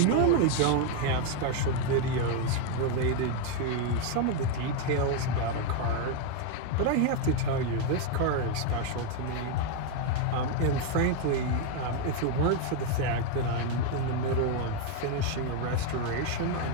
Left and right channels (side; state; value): both; different; correlation 0.01